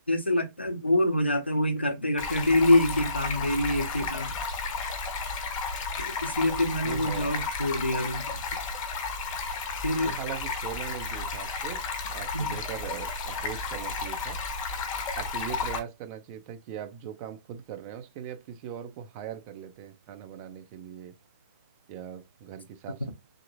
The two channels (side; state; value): both; inverted; correlation -0.62